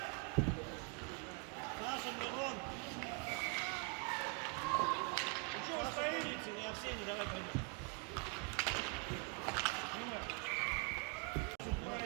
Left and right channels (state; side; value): quieter; left; 32.0 dB